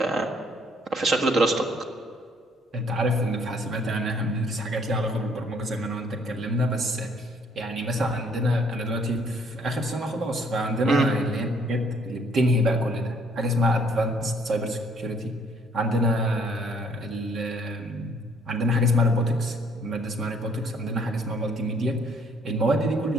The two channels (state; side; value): normal; both; correlation 0.63